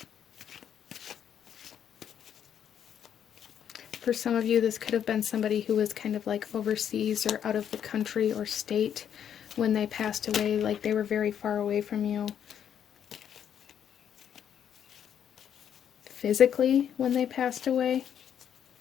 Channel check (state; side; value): quieter; right; 9.1 dB